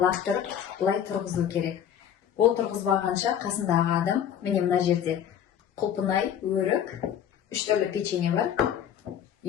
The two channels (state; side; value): quieter; right; 9.3 dB